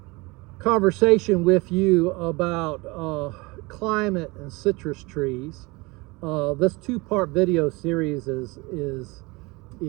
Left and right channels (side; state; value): left; quieter; 24.6 dB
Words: conversation with you about climate and citrus trees. This 2-part video series is